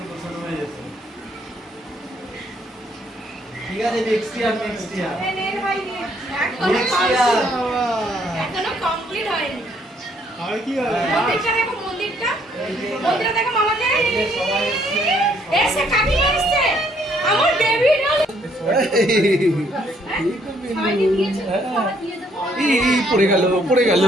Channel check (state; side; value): normal; both; correlation 0.67